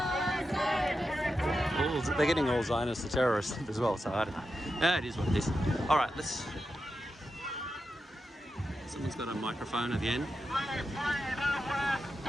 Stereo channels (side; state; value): both; normal; correlation 0.89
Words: They're getting all Zionists the terrorists as well, so I don't know. Yeah, it is what it is. All right, let's... Someone's got a microphone at the end.